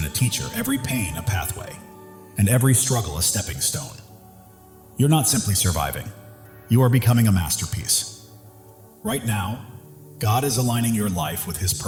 a teacher, every pain a pathway, and every struggle a stepping stone. You're not simply surviving. You are becoming a masterpiece. Right now, God is aligning your life with His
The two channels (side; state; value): both; identical; correlation 1.00